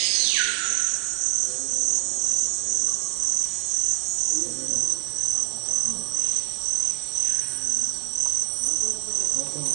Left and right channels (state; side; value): quieter; left; 37.2 dB